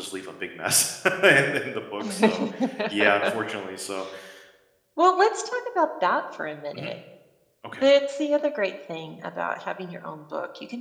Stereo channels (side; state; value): both; identical; correlation 1.00